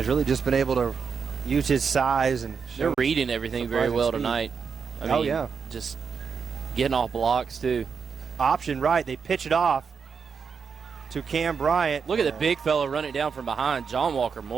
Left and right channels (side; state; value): left; quieter; 6.0 dB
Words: really just been able to use his size. And they're reading everything very well tonight. I mean, yeah. Just getting off blocks, too. Option right. They pitch it off to Cam Bryant. Look at the big fella running down from behind. John Walker